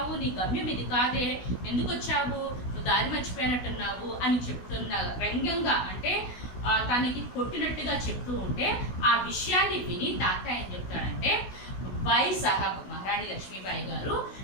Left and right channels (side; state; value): right; late; 16 ms